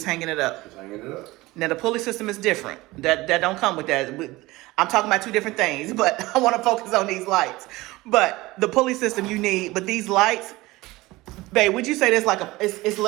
hanging it up? Just hanging it up. Now the pulley system is different. That don't come with that. I'm talking about two different things, but I want to focus on these lights. But the pulley system you need, but these lights, babe, would you say that's like it's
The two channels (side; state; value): left; quieter; 20.1 dB